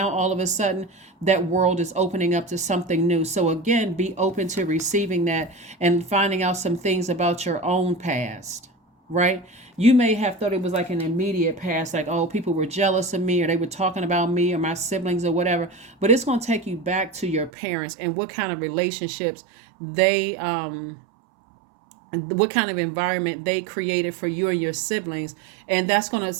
all of a sudden that world is opening up to something new. So again, be open to receiving that and finding out some things about your own past, right? You may have thought it was like an immediate past, like, oh, people were jealous of me, or they were talking about me or my siblings or whatever. But it's going to take you back to your parents and what kind of relationships they what kind of environment they created for you and your siblings, and that's gonna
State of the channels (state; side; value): drops out; left; at 17.5 s